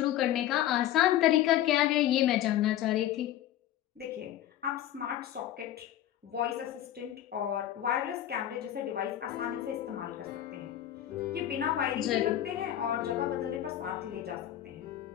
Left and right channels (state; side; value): quieter; right; 12.3 dB